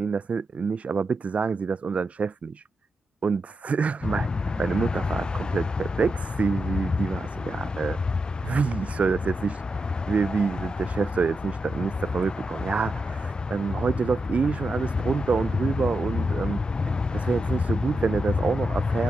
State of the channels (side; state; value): both; normal; correlation 0.86